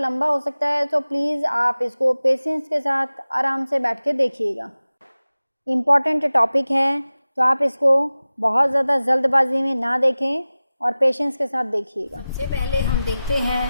हो सकता है, तो प्लीज़ आप इसको पेशेंस के साथ आराम से बैठ के देखिएगा. इम्पॉर्टेंट टॉपिक है, तो आप इसको बहुत ज़्यादा जल्दबाजी में ना देखें और पेशेंस के साथ देखिएगा. सबसे पहले हम देखते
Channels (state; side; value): inverted; both; correlation -0.96